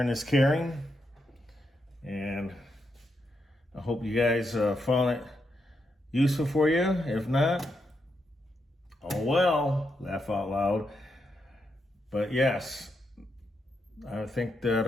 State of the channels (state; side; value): normal; both; correlation 0.82